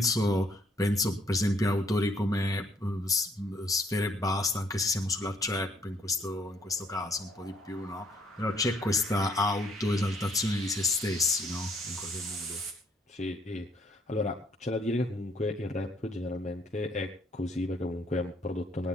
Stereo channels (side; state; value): both; normal; correlation 0.67